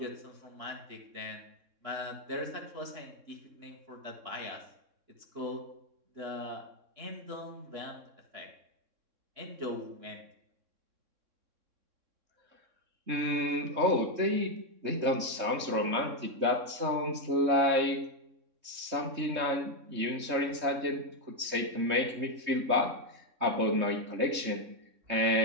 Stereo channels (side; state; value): left; late; 3.6 ms